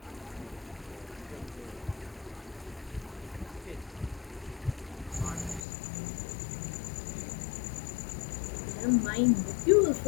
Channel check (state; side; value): drops out; right; at 5.6 s